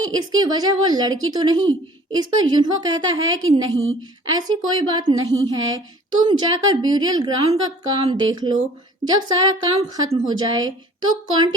इसकी वजह वो लड़की तो नहीं। इस पर युनहो कहता है कि नहीं, ऐसी कोई बात नहीं है, तुम जाकर ब्यूरियल ग्राउंड का काम देख लो। जब सारा काम खत्म हो जाए तो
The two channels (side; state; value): both; normal; correlation 0.50